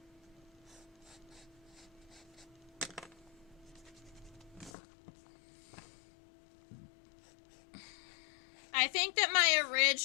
I think that my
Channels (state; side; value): drops out; right; at 4.7 s